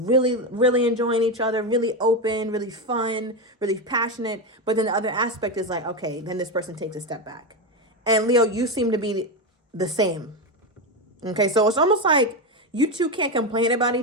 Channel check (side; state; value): both; normal; correlation 0.13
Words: really enjoying each other, really open, really fun, really passionate. But then the other aspect is like, okay, then this person takes a step back. And Leo, you seem to be the same. Okay, so it's almost like you two can't complain about